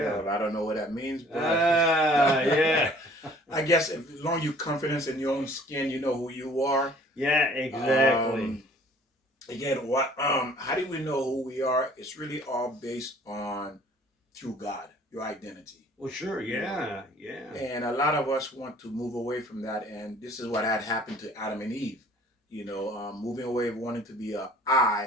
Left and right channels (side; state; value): both; normal; correlation 0.53